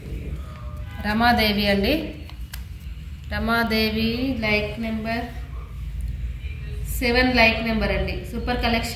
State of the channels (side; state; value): both; identical; correlation 1.00